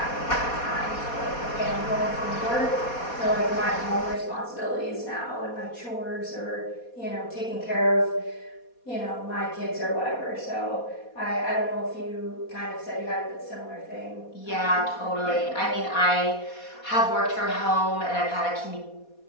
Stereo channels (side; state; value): right; late; 4.2 ms